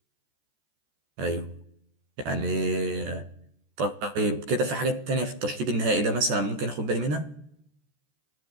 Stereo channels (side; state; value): left; late; 14 ms